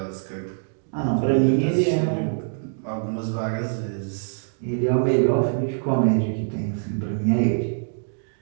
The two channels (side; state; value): left; silent; digital silence